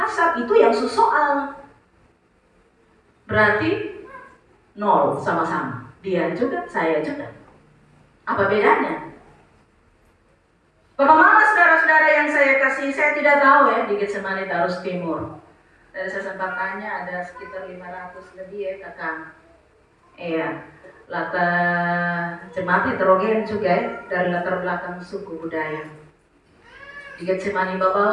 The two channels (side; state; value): both; identical; correlation 1.00